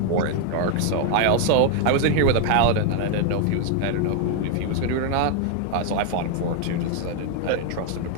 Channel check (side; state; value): both; different; correlation 0.00